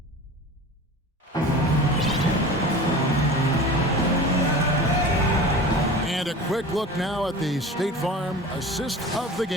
And a quick look now at the State Farm assist of the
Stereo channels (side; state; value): both; normal; correlation 0.35